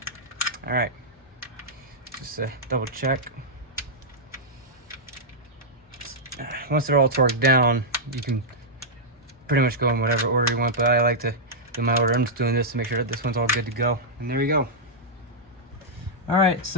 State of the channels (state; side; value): normal; both; correlation -0.08